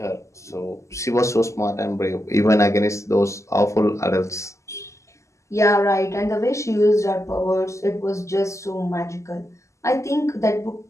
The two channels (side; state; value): right; late; 0.14 ms